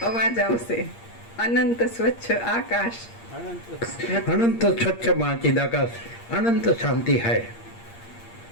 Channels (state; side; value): late; right; 8.6 ms